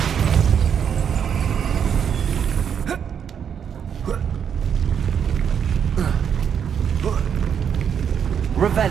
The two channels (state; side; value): quieter; left; 7.8 dB